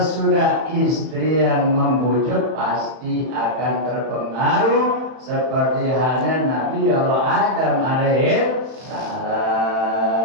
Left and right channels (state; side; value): late; left; 31 ms